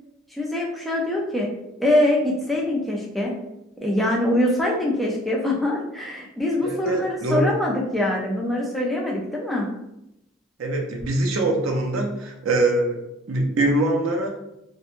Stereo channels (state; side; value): normal; both; correlation 0.55